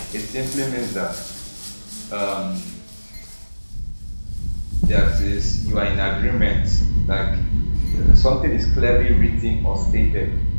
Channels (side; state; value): both; inverted; correlation -1.00